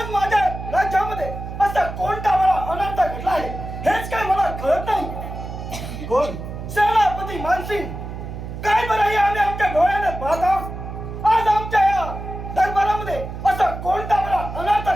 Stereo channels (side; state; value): right; noise; hum, 8 dB below the sound